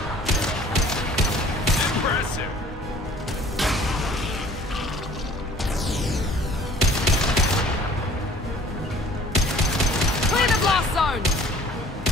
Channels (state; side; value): normal; both; correlation 0.52